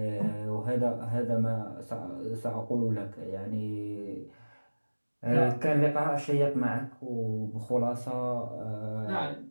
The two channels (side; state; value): both; inverted; correlation -1.00